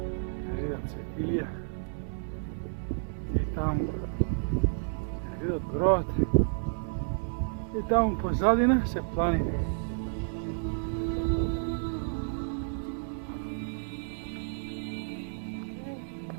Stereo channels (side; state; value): left; silent; digital silence